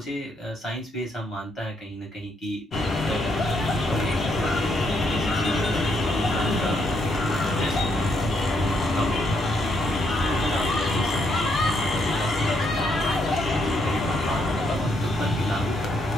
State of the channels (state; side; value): normal; both; correlation 0.75